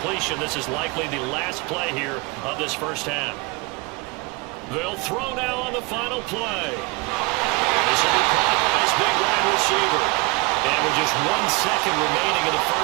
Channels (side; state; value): left; quieter; 26.7 dB